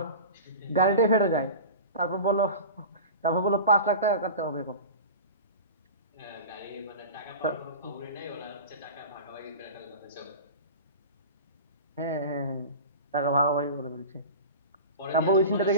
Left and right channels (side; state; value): both; inverted; correlation -0.34